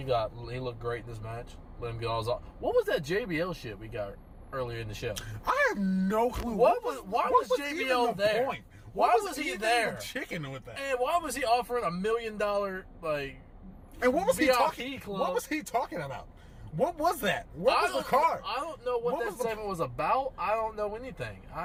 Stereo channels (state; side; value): identical; both; correlation 1.00